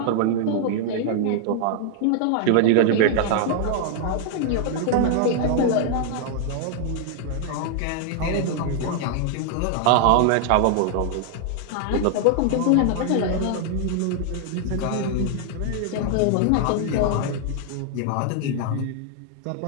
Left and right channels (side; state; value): both; different; correlation 0.00